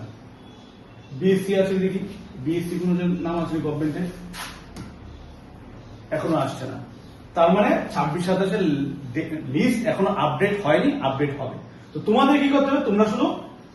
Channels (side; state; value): both; identical; correlation 1.00